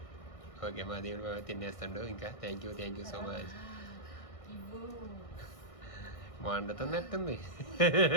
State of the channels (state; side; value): late; right; 1.6 ms